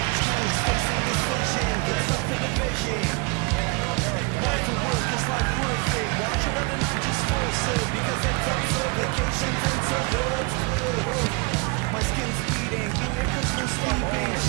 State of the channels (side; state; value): left; quieter; 28.9 dB